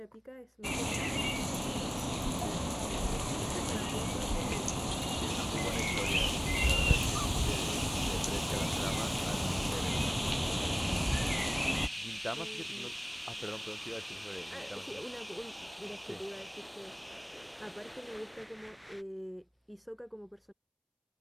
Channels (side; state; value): both; identical; correlation 1.00